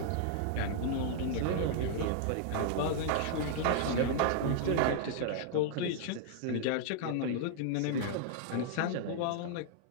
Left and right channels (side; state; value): both; different; correlation -0.01